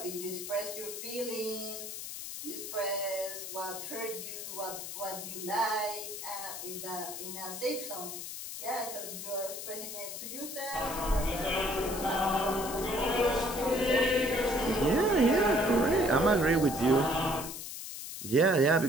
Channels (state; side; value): noise; left; hiss, 8 dB below the sound